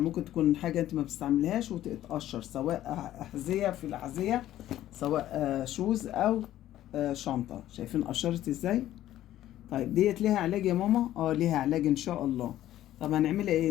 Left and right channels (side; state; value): right; quieter; 13.2 dB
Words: ممكن تكون حاجة انت ما بتستعملهاش وتتقشر، سواء أحذية في الأحذية، سواء شوز أو شنطة. شايفين قشرت ازاي؟ طيب ديت ليها علاج يا ماما؟ ليها علاج ان شاء الله. طب هنعملها